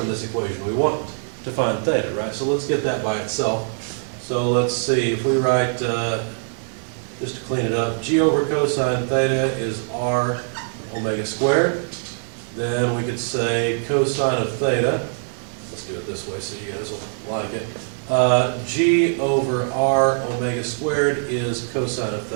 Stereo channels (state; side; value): silent; left; 64 dB below the other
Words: this equation? We want to find theta, right? So let's get that by itself. So let's see, if we write, just to clean it up, g over cosine theta is r omega squared. Then we could say cosine of theta, let's do it this way so you guys will like it. G over r omega squared is cosine of